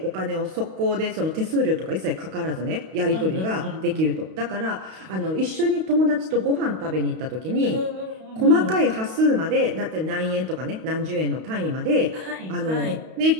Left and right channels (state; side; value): late; left; 32 ms